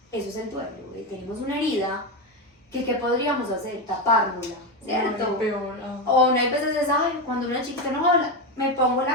eso es el duelo, tenemos una herida que ¿qué podríamos hacer? Tapárnosla, ¿cierto? No, peor. O una veces es, ay, cuando una chiquita no habla, me pongo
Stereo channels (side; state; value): both; normal; correlation 0.13